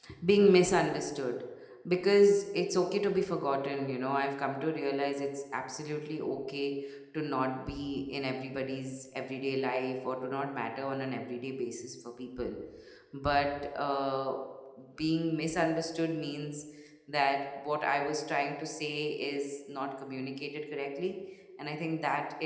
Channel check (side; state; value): both; identical; correlation 1.00